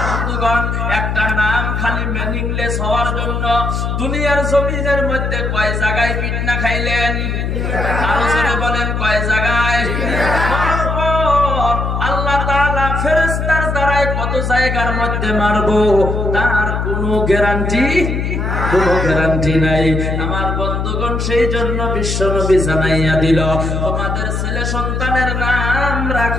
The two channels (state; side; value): noise; left; hum, 1 dB below the sound